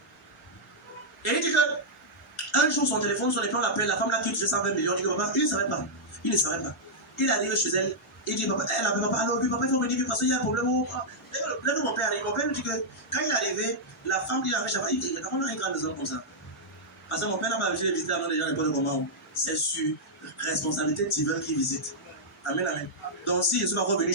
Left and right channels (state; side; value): normal; both; correlation -0.07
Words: Et il dit que un jour son téléphone sonne et puis on l'appelle, la femme là qui touchait 120 millions. Il dit que papa, il ne savait pas. Il ne savait pas. Il arrive chez elle. Il dit papa, elle appelle papa, alors lui papa il faut venir parce qu'il y a un problème. Là où mon père arrive, mon père lui dit que quand il est arrivé, la femme qui l'avait chavé, il dit on a une grande maison comme ça. Parce que mon père n'a pas visité visiter avant les gens n'importe comment. C'est sur responsabilité divine qui visite. Amen, amen. Donc si je suis pas revenu